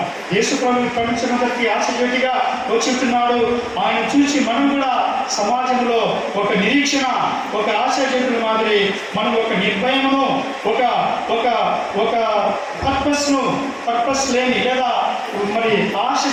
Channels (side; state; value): both; identical; correlation 1.00